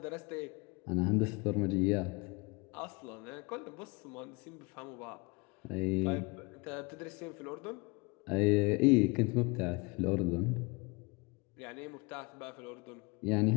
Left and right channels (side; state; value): right; quieter; 27.7 dB